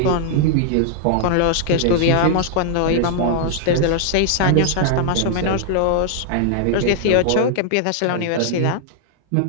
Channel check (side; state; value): both; different; correlation -0.01